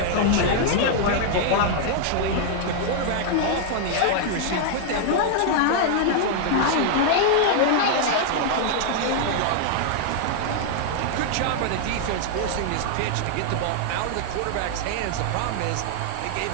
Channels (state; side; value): different; both; correlation 0.00